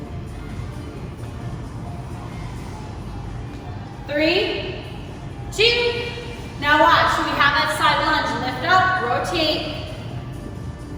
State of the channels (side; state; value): both; identical; correlation 1.00